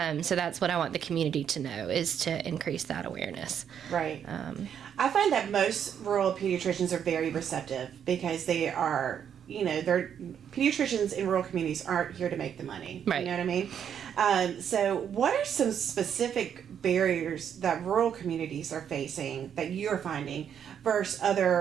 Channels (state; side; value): quieter; left; 8.5 dB